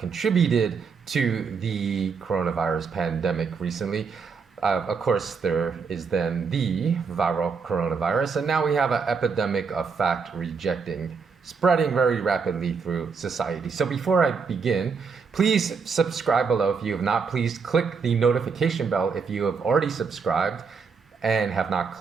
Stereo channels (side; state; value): left; quieter; 5.4 dB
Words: to the coronavirus pandemic recently. Of course, there is then the viral coronavirus, and now we have an epidemic of fact rejecting, spreading very rapidly through society. So before I begin, please subscribe below if you have not. Please click the notification bell if you have already subscribed and have not